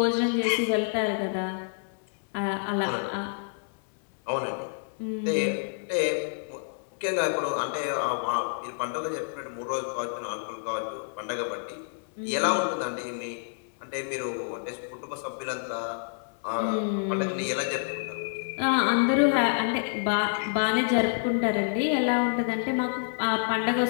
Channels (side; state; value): right; silent; 59 dB below the other